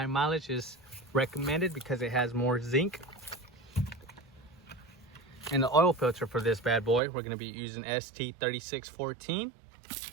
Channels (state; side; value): drops out; left; at 7.0 s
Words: mileage is recommended because it has more zinc. And the oil filter for this bad boy, we're gonna be using ST3614.